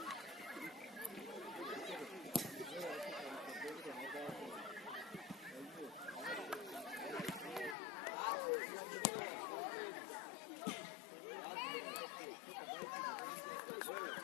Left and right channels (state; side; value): drops out; right; at 7.8 s